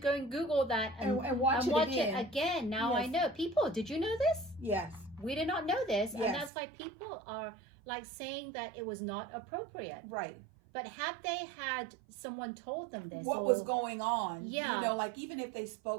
and Google that and watch it again. Now I know. People, did you know this? Yes. We did not know this. Yes. And that's why people are like saying that it was not appropriate. Right. But had they had someone told them this, what was going on? Yeah. You know, like even if they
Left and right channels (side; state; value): left; drops out; at 6.5 s